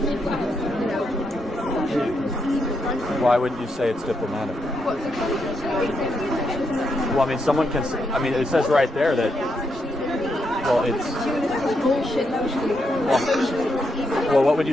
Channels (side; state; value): both; normal; correlation 0.80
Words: You know, Why wouldn't you say it's diplomatic? Well, I mean, someone can. I mean, it says right there that. Well, it's. Well, what would you